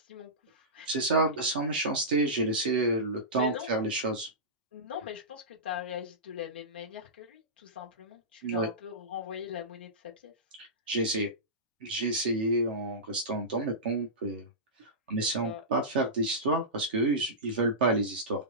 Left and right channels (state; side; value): normal; both; correlation -0.17